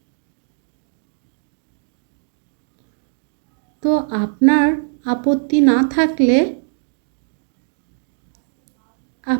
তো আপনার আপত্তি না থাকলে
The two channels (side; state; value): left; silent; digital silence